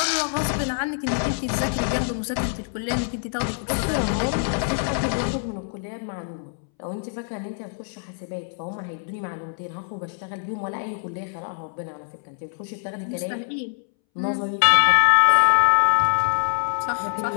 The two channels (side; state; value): right; silent; 62 dB below the other